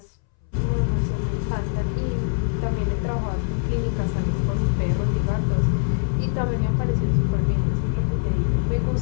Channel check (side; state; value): right; silent; 63 dB below the other